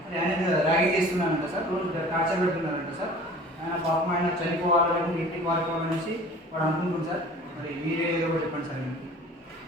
ఆయన ర్యాగింగ్ చేస్తున్నానంట సార్. రోజు టార్చర్ పెడుతున్నారంట సార్. ఆయన పాపం ఆయన చనిపోవాలని ఇంటికి వాడుకోవాలనేసి వాడు అనుకుంటుంది సార్. మరి మీరే ఏదో ఒకటి చెప్పండి సార్.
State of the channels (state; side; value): normal; both; correlation 0.44